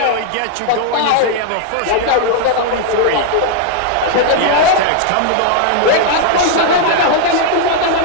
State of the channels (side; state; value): both; different; correlation 0.00